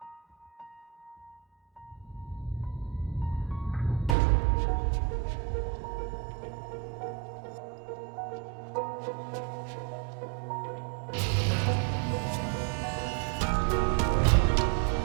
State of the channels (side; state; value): left; drops out; at 4.2 s